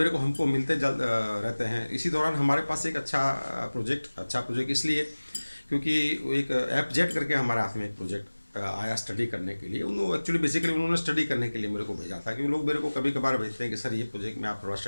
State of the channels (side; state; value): both; inverted; correlation -1.00